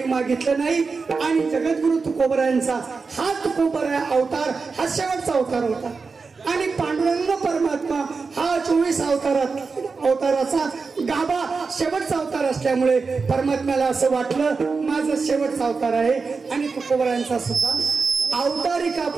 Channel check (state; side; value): quieter; left; 4.6 dB